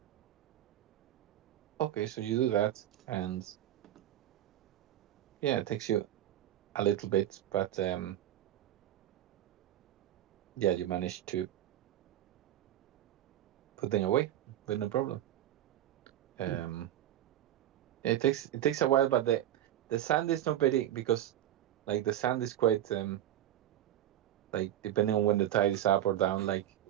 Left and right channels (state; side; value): quieter; left; 12.3 dB